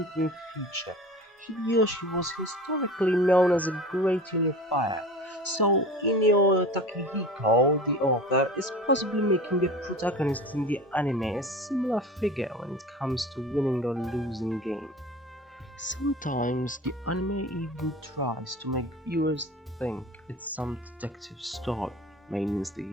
and future. Hideyoshi was historically known as a great unifier, so Inyo Takehiko, the author, is possibly making the protagonist in the anime a similar figure when it comes to winning or losing games. Sometimes the anime even tries to make viewers think it's some detective story, mainly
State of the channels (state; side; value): normal; both; correlation 0.36